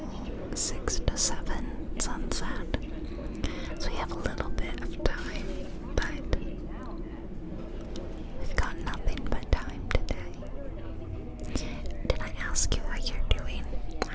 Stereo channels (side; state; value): both; identical; correlation 1.00